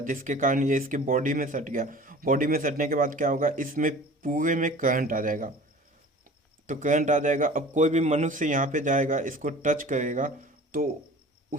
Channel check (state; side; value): normal; both; correlation 0.43